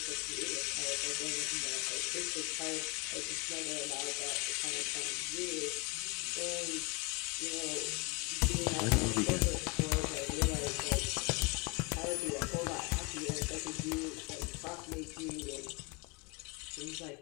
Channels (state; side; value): quieter; right; 27.5 dB